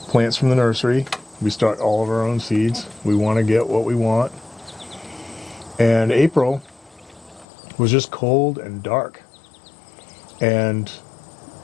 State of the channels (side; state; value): right; drops out; at 7.5 s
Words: plants from the nursery. We start all of our own seeds. We want to get what we want. And April was just cold and dark. And